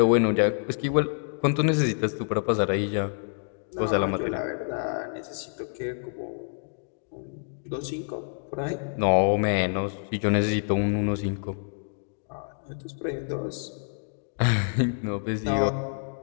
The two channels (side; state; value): right; silent; digital silence